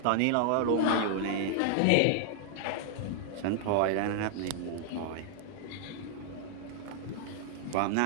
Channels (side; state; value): both; different; correlation 0.00